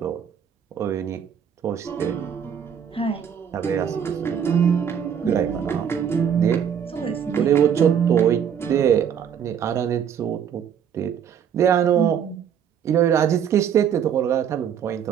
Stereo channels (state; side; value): quieter; left; 8.3 dB